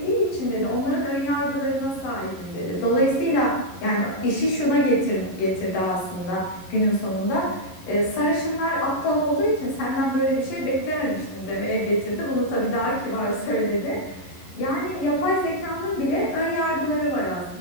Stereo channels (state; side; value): late; right; 11 ms